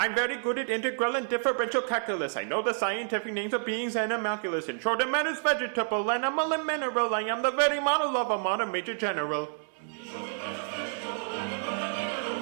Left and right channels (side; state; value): left; silent; digital silence